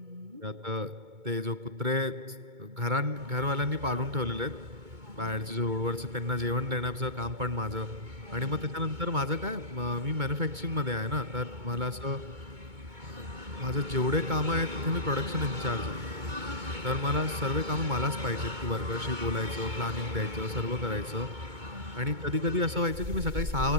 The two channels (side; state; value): left; late; 2.2 ms